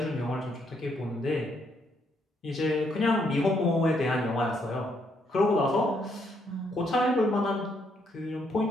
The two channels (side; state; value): both; normal; correlation 0.73